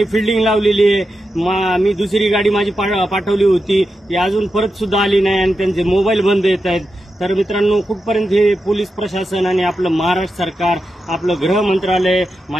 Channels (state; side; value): normal; both; correlation 0.89